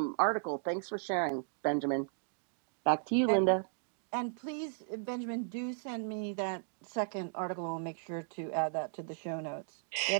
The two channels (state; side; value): silent; left; digital silence